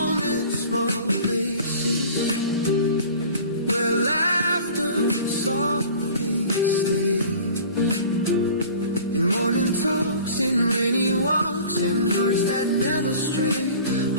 in small places, where laughter softly stays, in morning talks, in rainy walks, in hearts that never stray.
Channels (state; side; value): inverted; both; correlation -0.44